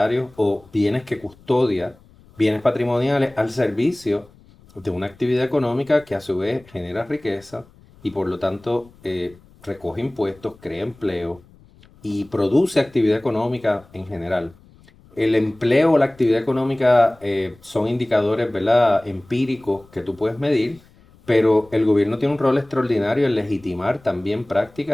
o bienes que custodia, bienes patrimoniales, al servicio de una actividad económica que a su vez genera riqueza y por lo tanto recoge impuestos, crea empleo y produce actividad económica en general. El empleo o la actividad económica son indicadores, ¿verdad?, empíricos que tú puedes medir, pero el gobierno tiene un rol extraordinario en legitimar también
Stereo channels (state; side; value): noise; left; rumble, 27 dB below the sound